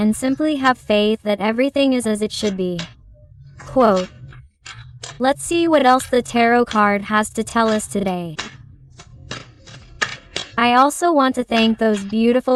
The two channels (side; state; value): both; identical; correlation 1.00